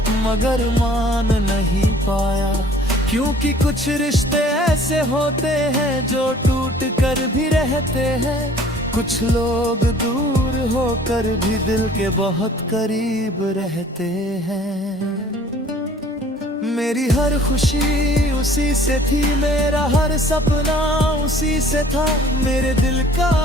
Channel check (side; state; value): both; normal; correlation 0.53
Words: मगर मान नहीं पाया। क्योंकि कुछ रिश्ते ऐसे होते हैं जो टूट कर भी रहते हैं, कुछ लोग दूर होकर भी दिल के बहुत करीब रहते हैं। मेरी हर खुशी उसी से थी, मेरा हर सपना उसी से था, मेरे दिल का